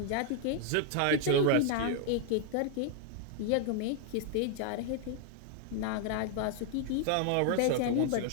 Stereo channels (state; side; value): different; both; correlation 0.00